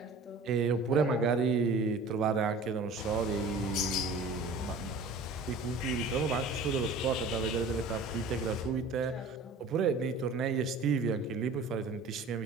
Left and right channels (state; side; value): quieter; left; 3.4 dB